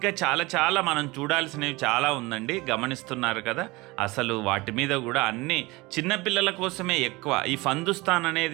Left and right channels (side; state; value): left; quieter; 22.6 dB